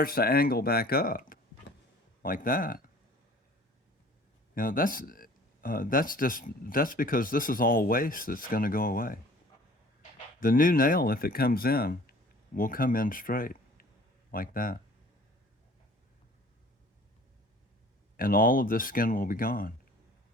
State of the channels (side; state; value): both; normal; correlation 0.50